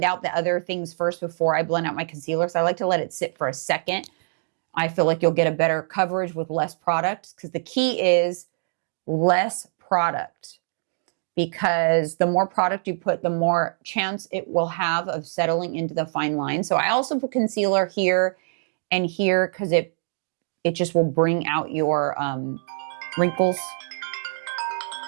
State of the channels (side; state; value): left; silent; digital silence